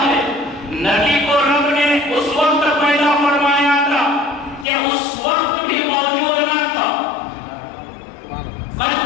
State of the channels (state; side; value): drops out; right; at 4.7 s